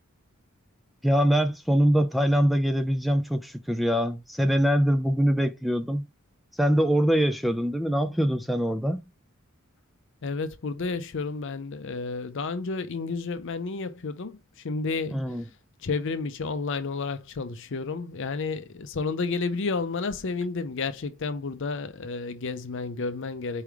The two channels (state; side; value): normal; both; correlation 0.77